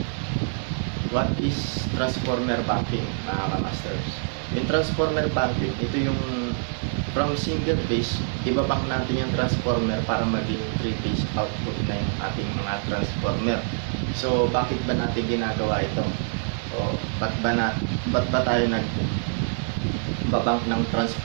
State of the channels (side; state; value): left; silent; digital silence